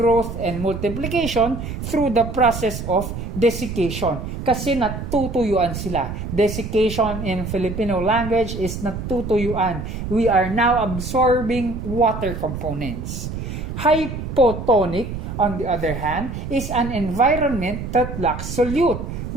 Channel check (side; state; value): right; noise; rumble, 7 dB below the sound